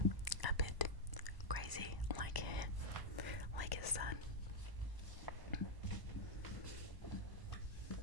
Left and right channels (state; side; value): late; left; 1.0 ms